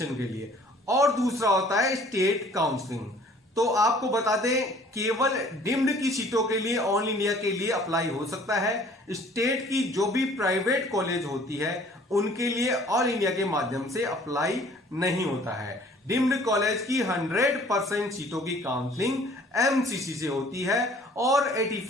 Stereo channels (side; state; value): both; normal; correlation 0.54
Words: के लिए, और दूसरा होता है स्टेट काउंसलिंग। तो आपको बता दें, केवल डीम्ड की सीटों के लिए ऑल इंडिया के लिए अप्लाई हो सकता है। स्टेट की जो भी प्राइवेट कॉलेज होती है उनके लिए ऑल इंडिया के माध्यम से अप्लाई नहीं होता है। डीम्ड कॉलेज की 100% सीटों की काउंसलिंग एमसीसी से होती है और